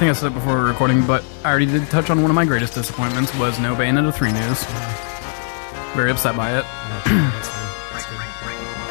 I said it before recording, but I already did touch on one of my greatest disappointments was no Bayonetta 3 news. very upset by it. Oh, sure, that's fine. That's good.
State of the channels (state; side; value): silent; right; 66 dB below the other